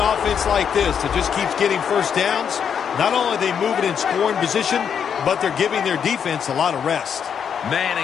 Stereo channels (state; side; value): quieter; right; 7.6 dB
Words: offense like this that just keeps getting first downs, not only are they moving in scoring position, but they're giving their defense a lot of rest.